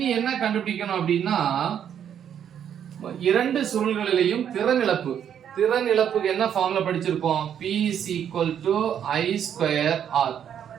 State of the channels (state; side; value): quieter; left; 9.0 dB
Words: என்ன கண்டுபிடிக்கணும் அப்படின்னா இரண்டு சுருள்களிலேயும் திறன் இழப்பு. திறன் இழப்புக்கு என்ன ஃபார்முலா படிச்சிருப்போம், P is equal to I square R.